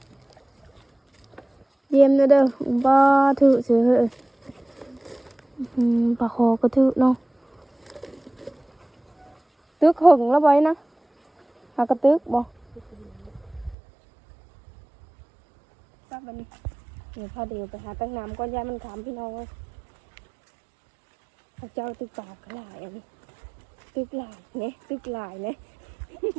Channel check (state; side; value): drops out; left; at 13.8 s